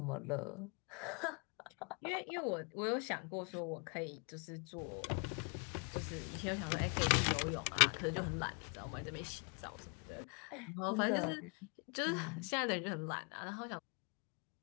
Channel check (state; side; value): quieter; right; 36.0 dB